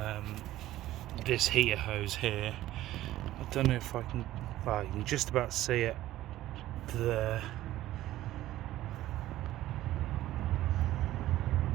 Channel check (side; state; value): left; quieter; 14.8 dB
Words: this heater hose here. I don't know if I can, well, you can just about see it there.